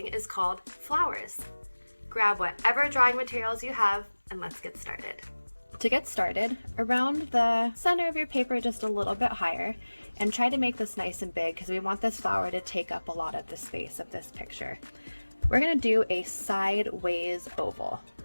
is called Flowers. Grab whatever drawing materials you have and let's get started. To get started, around the center of your paper just a little bit higher, and try to make this nice and big because we want this flower to take up a lot of the space of this picture. We're going to do a sideways oval,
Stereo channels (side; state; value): both; inverted; correlation -1.00